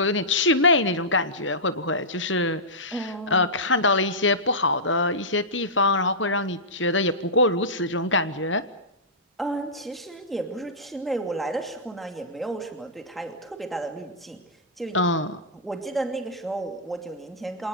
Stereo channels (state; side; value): normal; both; correlation -0.15